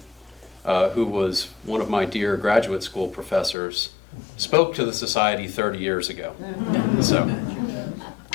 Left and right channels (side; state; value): right; drops out; at 3.6 s